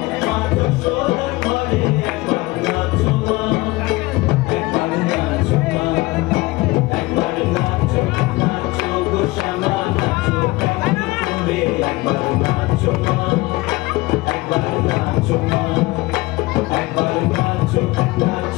মা যশোদার ঘরে একবার নাচো মা, একবার নাচো মা, একবার নাচো নাচো গো শ্যামা নাচো কেমন করে একবার নাচো মা, একবার নাচো মা, একবার নাচো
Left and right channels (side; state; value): right; quieter; 21.3 dB